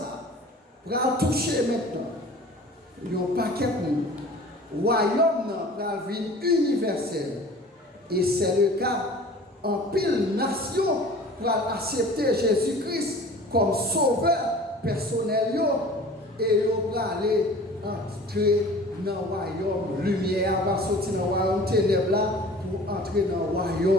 va toucher maintenant. Il y a un paquet de monde. Le royaume va venir universel. Et c'est le cas en pile nation pour accepter Jésus-Christ comme sauveur personnel. Et il va aller entrer dans le royaume. Lumière va sortir dans le royaume ténèbres pour entrer dans le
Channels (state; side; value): normal; both; correlation 0.44